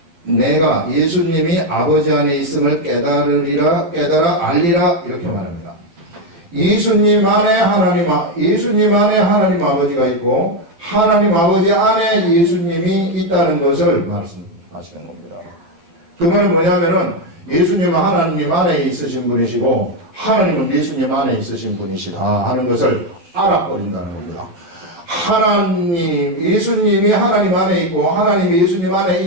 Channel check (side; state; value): left; late; 12 ms